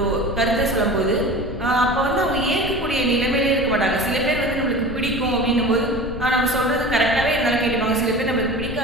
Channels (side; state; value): left; noise; rumble, 10 dB below the sound